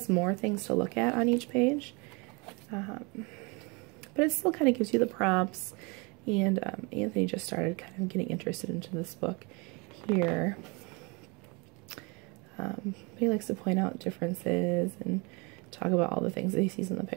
more things to look at on each page, but it still kind of gives you the prompts. And Anthony just started kind of getting interested into this book here. He likes to point out differences and talk about all the things that he sees in the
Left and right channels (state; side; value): quieter; left; 29.3 dB